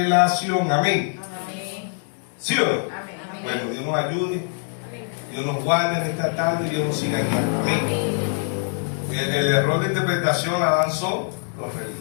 Amén. Amén. ¿Sí o no? Amén. Bueno, Dios nos ayude, Dios nos guarde en esta tarde, Dios nos siga guiando. Amén. El error de interpretación la dan son los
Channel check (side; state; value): right; silent; 59 dB below the other